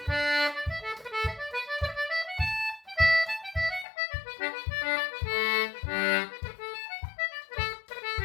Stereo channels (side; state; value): right; drops out; at 3.9 s